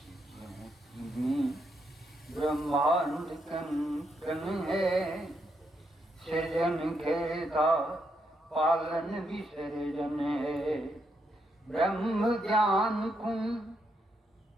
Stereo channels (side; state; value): both; normal; correlation 0.79